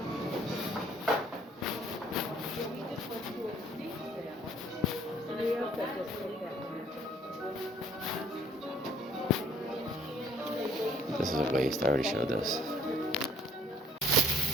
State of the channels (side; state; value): both; normal; correlation 0.57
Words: This is a waste. I already showed this.